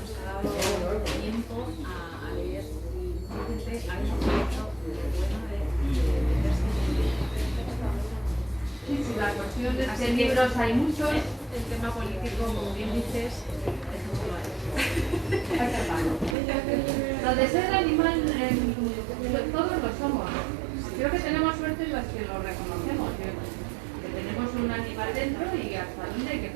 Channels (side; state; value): left; drops out; at 16.4 s